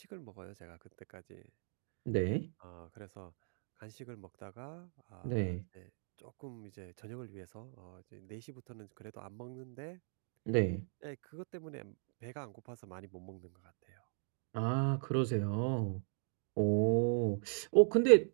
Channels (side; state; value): left; silent; 52 dB below the other